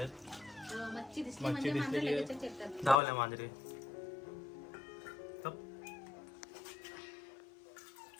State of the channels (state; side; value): drops out; right; at 3.0 s